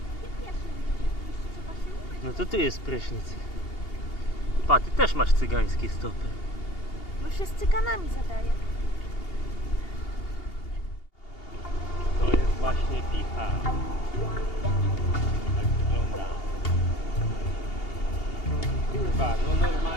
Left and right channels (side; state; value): right; late; 2.8 ms